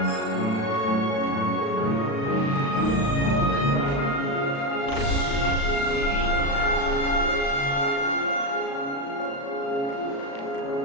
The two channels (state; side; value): late; right; 36 ms